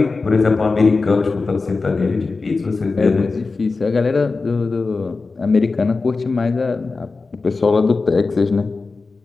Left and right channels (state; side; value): quieter; right; 4.0 dB